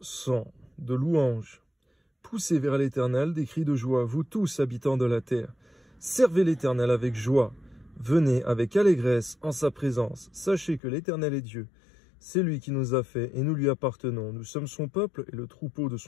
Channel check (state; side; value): drops out; right; at 10.8 s